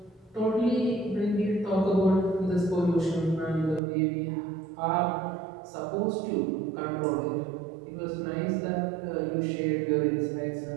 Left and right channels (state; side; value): drops out; left; at 3.8 s